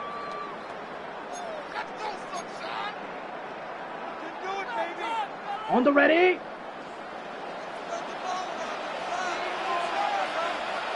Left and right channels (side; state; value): both; identical; correlation 1.00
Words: On the ready.